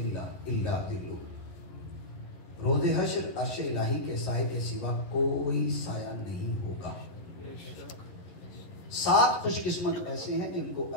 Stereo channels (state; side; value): late; right; 11 ms